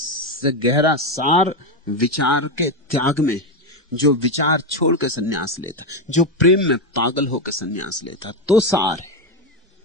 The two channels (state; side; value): normal; both; correlation 0.09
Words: से गहरा सार विचार के त्याग में, जो विचार छोड़ के सन्यास लेता, जो प्रेम में पागल होकर सन्यास लेता, तो सार है।